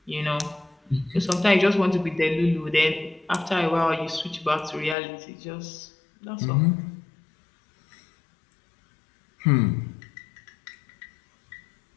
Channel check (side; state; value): right; drops out; at 5.0 s